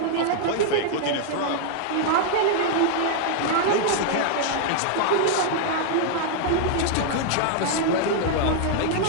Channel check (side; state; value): both; different; correlation 0.00